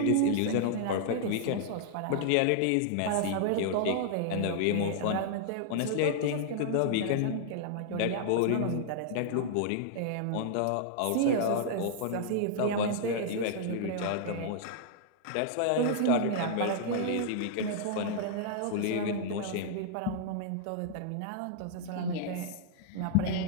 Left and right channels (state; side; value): different; both; correlation -0.01